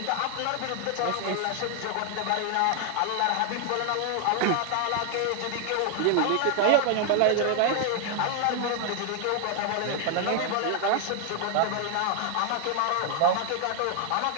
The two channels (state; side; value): different; both; correlation 0.00